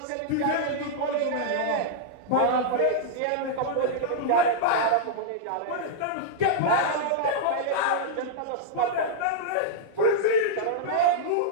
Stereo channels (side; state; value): both; different; correlation -0.02